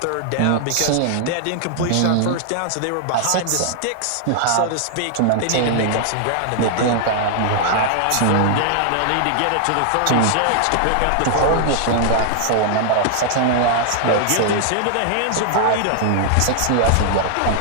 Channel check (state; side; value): different; both; correlation 0.00